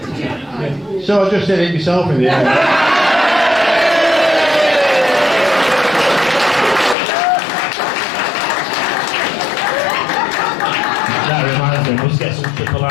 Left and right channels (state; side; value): drops out; right; at 7.0 s